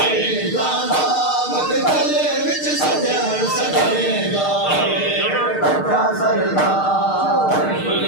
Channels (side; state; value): right; late; 6.5 ms